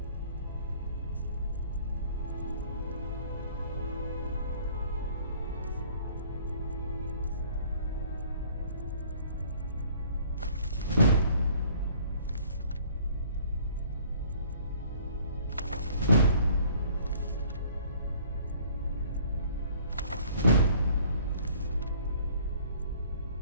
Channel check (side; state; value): both; inverted; correlation -0.55